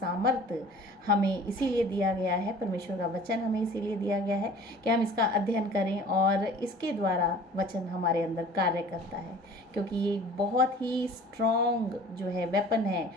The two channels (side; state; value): both; normal; correlation 0.46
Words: हमें इसीलिए दिया गया है, परमेश्वर का वचन हमें इसीलिए दिया गया है कि हम इसका अध्ययन करें और इसके द्वारा वचन हमारे अंदर कार्य करता है, क्योंकि ये बहुत ही स्ट्रॉन्ग जो है वेपन है।